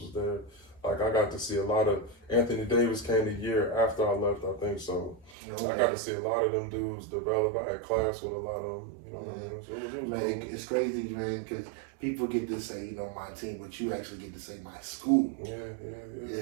was there. Like I got to see a lot of Anthony Davis came the year after I left, I think so. I got to see a lot of them dudes develop. I had class with a lot of them. You know what I mean? So it was man, cool. it's crazy, man, because people get to say, my team, but you actually get to say my school. Yeah.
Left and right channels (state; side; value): drops out; left; at 5.4 s